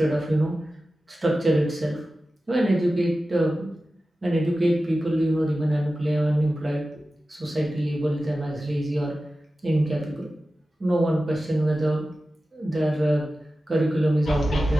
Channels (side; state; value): both; normal; correlation 0.94